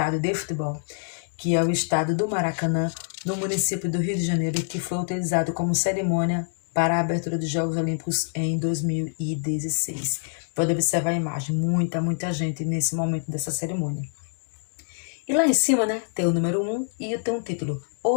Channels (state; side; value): silent; right; digital silence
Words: de futebol, que é o estádio do Maracanã, no município do Rio de Janeiro, que foi utilizado como cerimônia para a abertura dos Jogos Olímpicos em 2016. Pode observar a imagem, muita gente nesse momento dessa cerimônia. E lá em cima, né, tem o número 1 e tem um título,